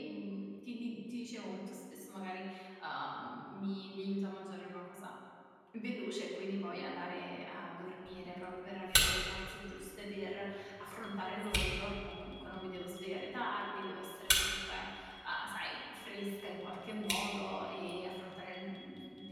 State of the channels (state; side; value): identical; both; correlation 1.00